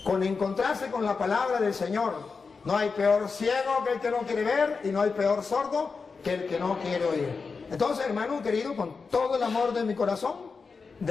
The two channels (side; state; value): right; quieter; 4.8 dB